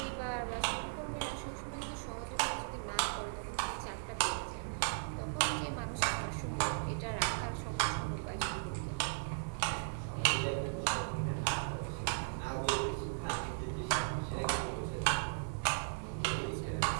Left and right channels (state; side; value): silent; left; digital silence